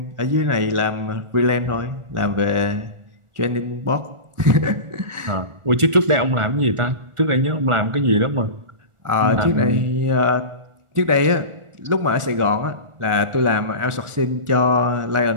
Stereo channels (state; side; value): late; left; 1.4 ms